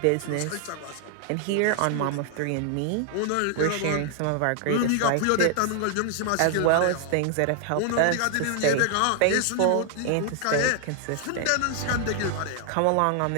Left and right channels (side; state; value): both; different; correlation 0.00